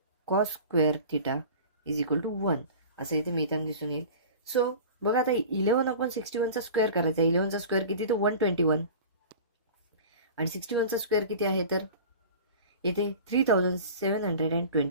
cos square theta is equal to 1 असं इथे मिळताना दिसून येईल. सो बघा, आता 11/61चा स्क्वेअर करायचा आहे. 11चा स्क्वेअर किती तर 121 आणि 61चा स्क्वेअर किती आहे तर येथे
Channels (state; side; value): inverted; both; correlation -0.38